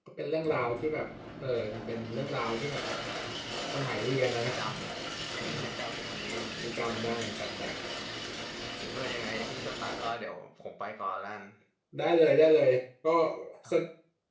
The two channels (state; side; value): identical; both; correlation 1.00